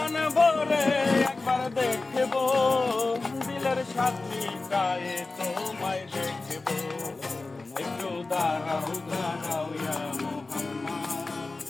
ভরে একবার দেখব, দিলের সাথীটায় তোমায় দেখব। একটু দাঁড়াও দাঁড়াও ইয়া মুহাম্মদ,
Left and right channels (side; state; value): right; quieter; 3.5 dB